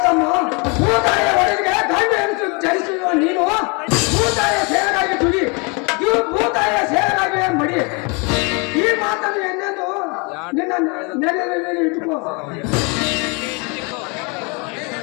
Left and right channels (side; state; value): right; quieter; 31.7 dB